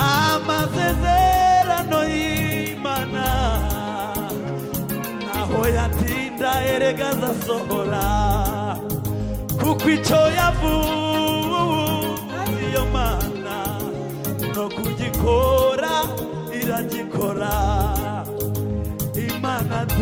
y'Imana naho yatinda erega azasohora, kuko icyo yavuze iyo Mana no kugikora iragikora. Imana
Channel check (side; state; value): both; identical; correlation 1.00